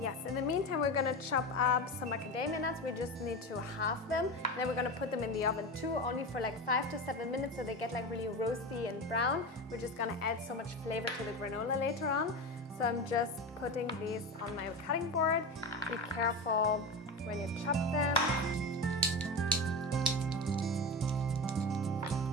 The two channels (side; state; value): both; normal; correlation 0.24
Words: Yes, in the meantime, we're gonna chop up some macadamia nuts. We just need to halve them. And then we're gonna put them in the oven too, only for like 5 to 7 minutes so they get like really roasty and brown. We're just gonna add so much flavor to the granola later on. So I'm just putting these on my cutting board. Be careful when you chop them.